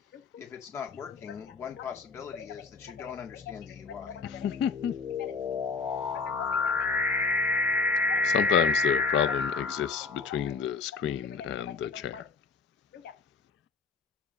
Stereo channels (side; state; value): right; quieter; 4.5 dB